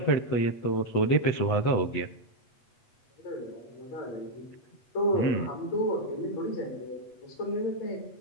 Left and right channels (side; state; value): right; late; 8.0 ms